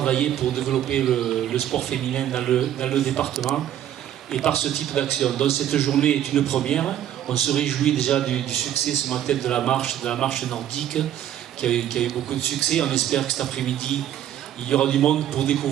pour développer le sport féminin dans le département et par ce type d'action. Donc cette journée est une première. On se réjouit déjà du succès ce matin de la marche nordique qui a eu beaucoup de succès. On espère que cet après-midi, il y aura du monde pour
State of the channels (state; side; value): quieter; left; 11.3 dB